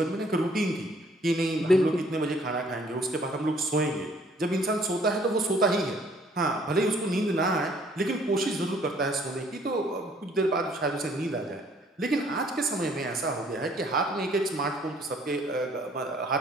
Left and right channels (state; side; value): normal; both; correlation 0.61